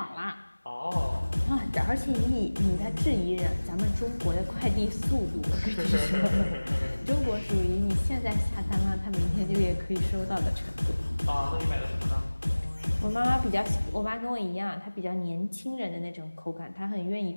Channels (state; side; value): inverted; both; correlation -1.00